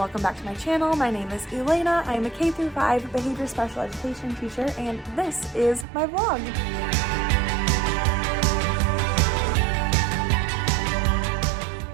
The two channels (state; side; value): drops out; left; at 5.9 s